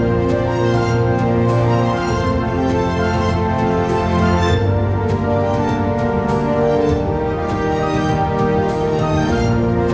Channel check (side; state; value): both; identical; correlation 1.00